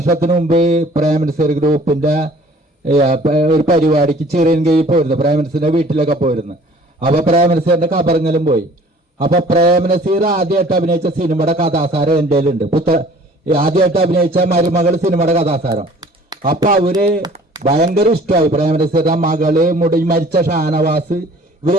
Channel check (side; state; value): both; normal; correlation 0.51